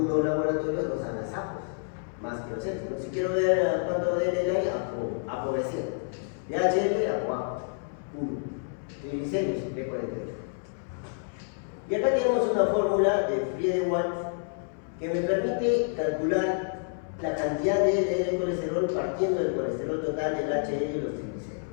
laboratorios dosan las APOs, más que los otros. Si quiero ver cuánto de LDL hay, ApoB100. De HDL, ApoA 1. Triglicéridos, B48. Y acá tenemos una fórmula de Friede-Watt que me permite calcular la cantidad de LDL colesterol partiendo del colesterol total, del HDL y los triglicéridos.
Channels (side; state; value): right; silent; 59 dB below the other